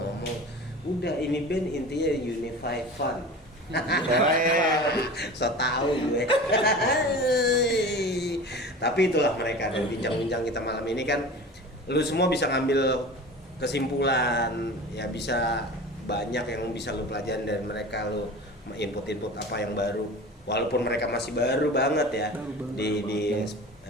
udah ini band intinya unify fun. So tahu gue. Tapi itulah mereka, dari bincang-bincang kita malam ini kan lu semua bisa ngambil kesimpulan, ya bisa banyak yang bisa lu pelajarin dari mereka, lu input-input apa yang baru. Walaupun mereka masih baru banget ya di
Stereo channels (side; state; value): both; normal; correlation 0.36